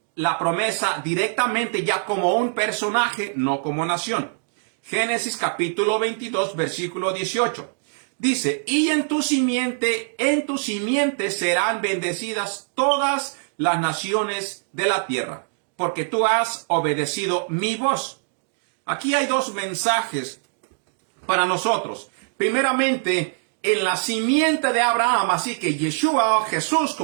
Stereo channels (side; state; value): left; silent; digital silence